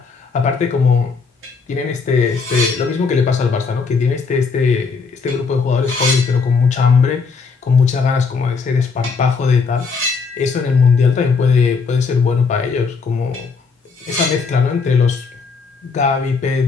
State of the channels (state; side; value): quieter; right; 4.9 dB